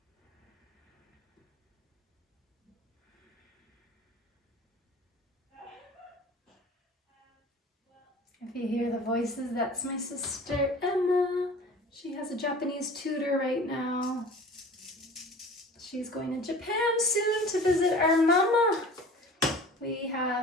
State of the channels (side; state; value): both; normal; correlation 0.42